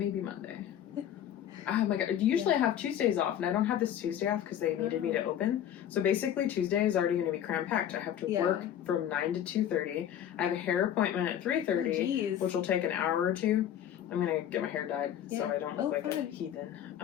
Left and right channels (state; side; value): quieter; right; 10.3 dB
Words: Monday. Oh my god. Usually I have Tuesdays off, and I don't have this Tuesday off because they needed me to open. So basically Tuesday is already going to be cram-packed. I have to work from 9 to 2:30. I have a hair appointment at 3:30, which will take an hour or two. I'm going to get my hair dyed so I don't look like a heathen,